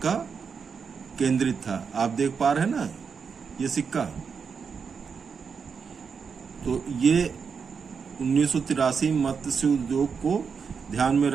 केंद्रित था। आप देख पा रहे हैं ना ये सिक्का। तो ये 1983 मत्स्य उद्योग को ध्यान में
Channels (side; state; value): left; quieter; 5.9 dB